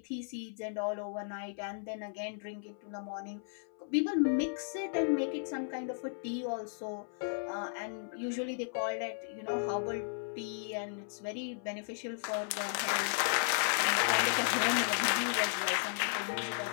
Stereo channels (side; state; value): right; silent; 54 dB below the other